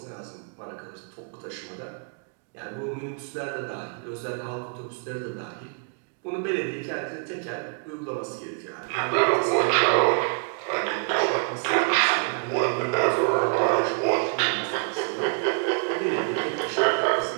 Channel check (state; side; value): quieter; left; 36.6 dB